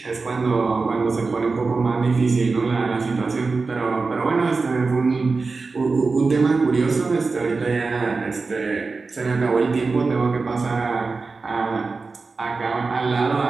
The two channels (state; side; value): quieter; left; 4.1 dB